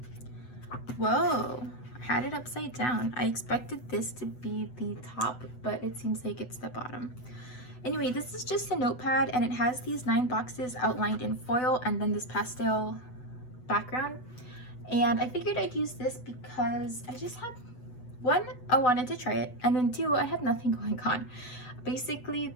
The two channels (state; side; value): late; right; 8.0 ms